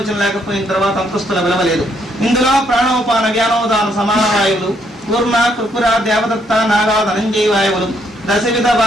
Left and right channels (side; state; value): both; normal; correlation 0.72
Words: లేకపోయిన తర్వాత అంతస్తుల విలువలేదు. ఇందులో ప్రాణోపాన వ్యానోదాన సమాన వాయువులు, కూర్మ కృపుర దేవదత్త నాగా ధనంజయ వాయువులు, దశవిధ